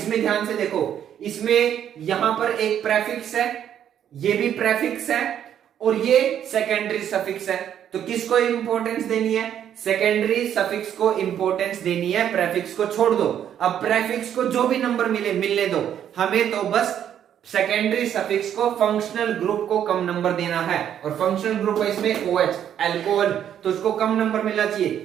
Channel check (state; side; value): quieter; left; 9.8 dB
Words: ध्यान से देखो, इसमें यहां पर एक प्रेफिक्स है, ये भी प्रेफिक्स है, और ये सेकेंडरी सफिक्स है, तो किसको इंपॉर्टेंस देनी है, सेकेंडरी सफिक्स को इंपॉर्टेंस देनी है, प्रेफिक्स को छोड़ दो। अब प्रेफिक्स को जो भी नंबर मिलने दो, हमें तो बस सेकेंडरी सफिक्स को फंक्शनल ग्रुप को कम नंबर देना है, और फंक्शनल ग्रुप है इसमें OH अल्कोहल, तो उसको कम नंबर मिलना चाहिए।